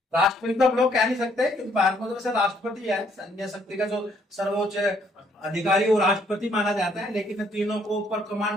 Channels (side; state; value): both; normal; correlation 0.68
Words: राष्ट्रपति तो हम लोग कह नहीं सकते क्योंकि भारत में तो वैसे राष्ट्रपति है, सैन्य शक्ति का जो सर्वोच्च अधिकारी वो राष्ट्रपति माना जाता है। लेकिन तीनों को ऊपर